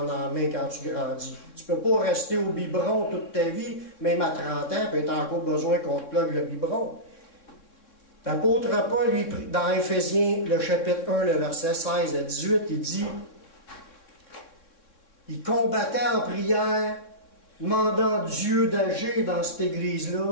en main quand tu grandis. Tu ne peux pas rester au biberon toute ta vie, même à 30 ans, puis tu as encore besoin qu'on te plug le biberon. L'apôtre Paul, lui, dans Éphésiens, le chapitre 1, le verset 16 à 18, il dit, il combattait en prière, demandant Dieu d'agir dans cette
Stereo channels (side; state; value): right; late; 3.6 ms